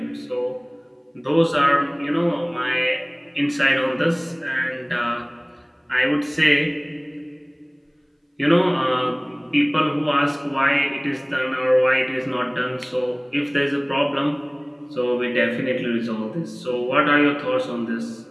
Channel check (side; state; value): both; identical; correlation 1.00